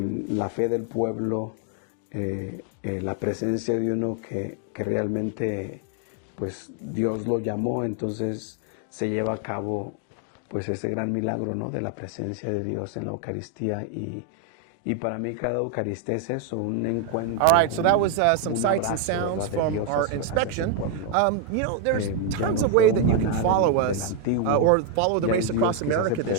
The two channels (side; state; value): both; different; correlation 0.01